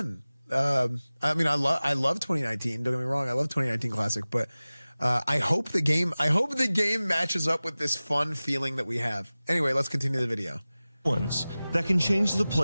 I mean, I love 2019. Don't get me wrong. I love 2019 Classic, but I hope the game matches up with this fun feeling that we have. Anyway, let's continue the video. Ones that can change the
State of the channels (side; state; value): both; inverted; correlation -0.98